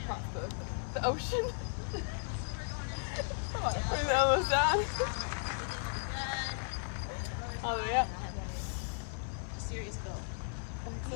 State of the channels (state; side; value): silent; right; 54 dB below the other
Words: across the ocean. Bring the elbows down. Everything will be good. All the way up. I have a serious bill.